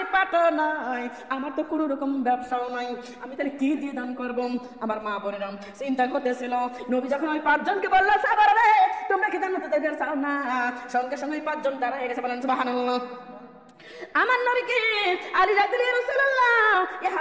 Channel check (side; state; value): both; identical; correlation 1.00